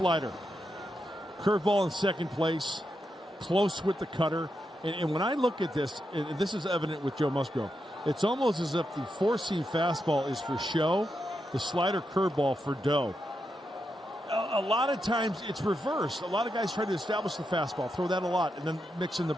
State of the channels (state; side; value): normal; both; correlation 0.85